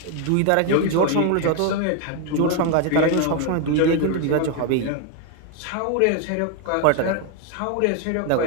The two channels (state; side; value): different; both; correlation 0.01